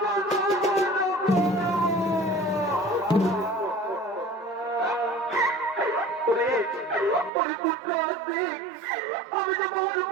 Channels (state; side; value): drops out; left; at 7.3 s